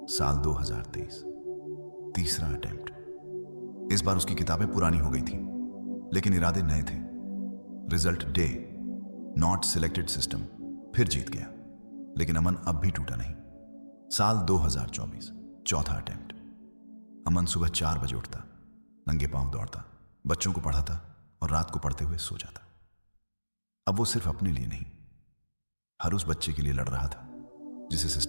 साल 2023, तीसरा अटेम्प्ट। इस बार उसकी किताबें पुरानी हो गई थी, लेकिन इरादे नए थे। Result day, not selected system फिर जीत गया, लेकिन अमन अब भी टूटा नहीं। साल 2024, चौथा अटेम्प्ट। अमन सुबह 4 बजे उठता, नंगे पांव दौड़ता, बच्चों को पढ़ाता और रात को पढ़ते हुए सो जाता। अब वो सिर्फ अपने लिए नहीं, हर उस बच्चे के लिए लड़ रहा था जिसे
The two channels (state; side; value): inverted; both; correlation -1.00